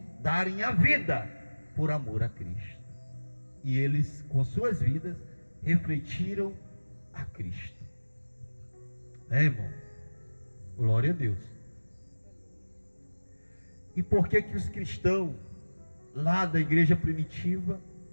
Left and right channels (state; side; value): inverted; both; correlation -1.00